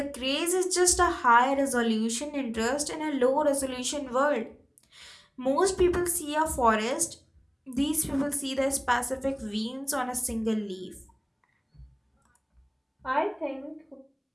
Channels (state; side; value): identical; both; correlation 1.00